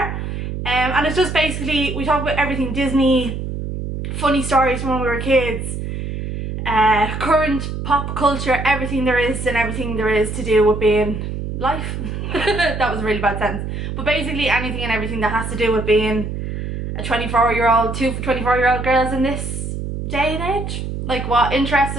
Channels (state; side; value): noise; right; hum, 5 dB below the sound